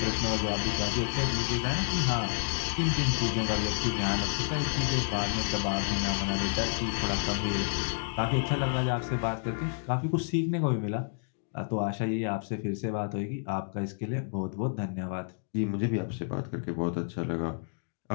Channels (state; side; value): silent; right; digital silence